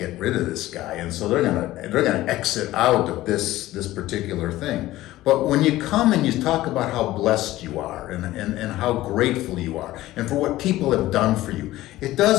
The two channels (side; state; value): right; quieter; 16.2 dB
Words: rid of this guy, and so they're gonna exit out of this particular thing. But when you come and you talk about how blessed you are and how grateful you are and for what people have done for you, it